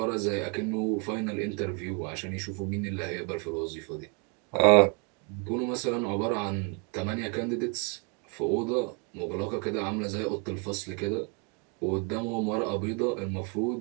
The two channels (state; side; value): quieter; left; 33.7 dB